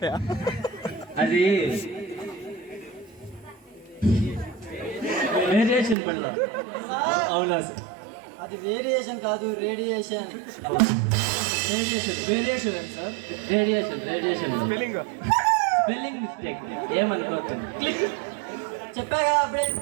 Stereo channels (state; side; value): drops out; left; at 6.0 s